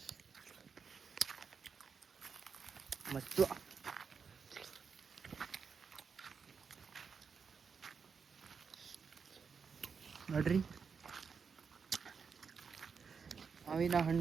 ಮತ್ತು ನೋಡ್ರಿ, ಮಾವಿನ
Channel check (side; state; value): left; quieter; 5.8 dB